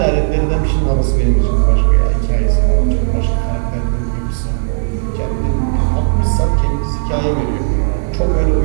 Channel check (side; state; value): left; silent; digital silence